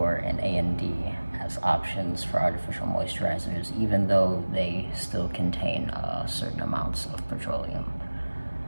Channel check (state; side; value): inverted; both; correlation -1.00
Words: and A&D as options for artificial moisturizers, even though they still contain certain amounts of petroleum.